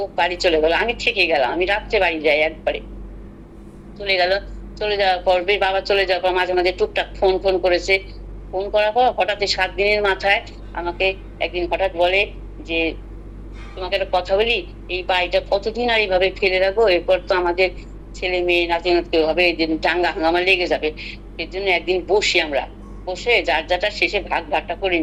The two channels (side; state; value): both; identical; correlation 1.00